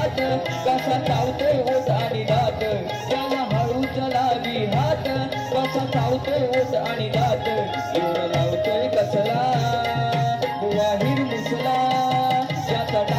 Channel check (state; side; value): identical; both; correlation 1.00